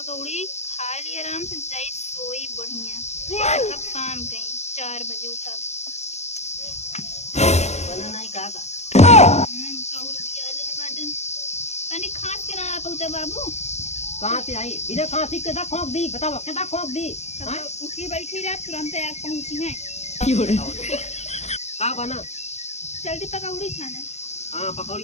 खा ली आराम से, जाई सोई बढ़िया। अब काम कहीं 4 बजे उठब। बना नहीं का पकौड़ी दिया ले बाटन तनी खास के ना पहुंचा बाबू। कहां से आई बिना खांसी के दा खोक दी, बताओ केदा खोक दी। हां उठी बैठी रात तुरंत आ पहुंची है। का बना जल्दी पकौड़ी छाने। हां पकौड़ी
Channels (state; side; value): late; right; 0.32 ms